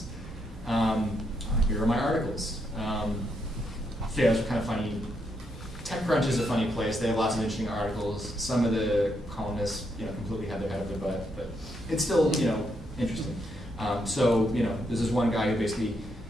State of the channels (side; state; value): both; normal; correlation 0.78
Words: Here are my articles. Yeah, those are kind of funny. TechCrunch is a funny place. They have lots of interesting articles. Some of the columnists, completely have their head up their butt, but it's still, interesting. So, this is one guy who basically